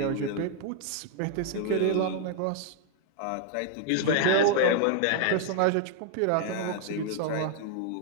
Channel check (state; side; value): different; both; correlation 0.00